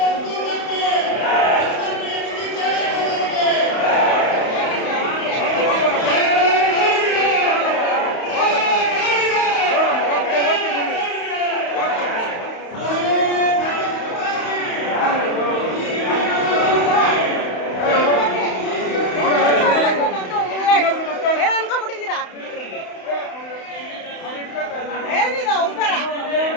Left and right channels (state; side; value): late; right; 31 ms